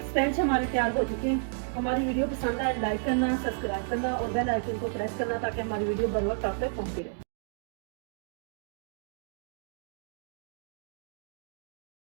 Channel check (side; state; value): left; silent; digital silence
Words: स्पंज हमारे तैयार हो चुके हैं। हमारी वीडियो पसंद आए लाइक करना, सब्सक्राइब करना और बेल आइकन को प्रेस करना, ताकि हमारी वीडियो बर वक्त आप तक पहुंचती रहे।